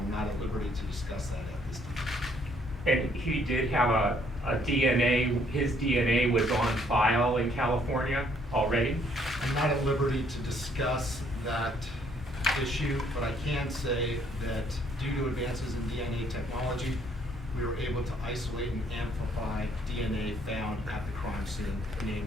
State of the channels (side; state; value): both; normal; correlation 0.65